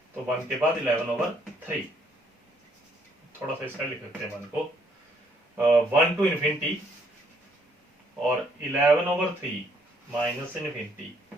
तो 1 के बाद 11/3, थोड़ा सा इसका लिख सकते हैं 1 को, 1 टू इन्फिनिटी और 11/3 माइनस इन्फिनिटी,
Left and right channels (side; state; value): both; normal; correlation 0.68